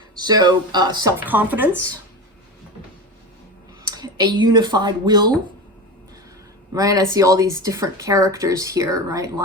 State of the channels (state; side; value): normal; both; correlation 0.25